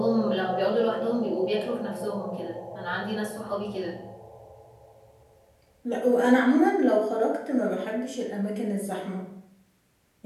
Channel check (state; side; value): identical; both; correlation 1.00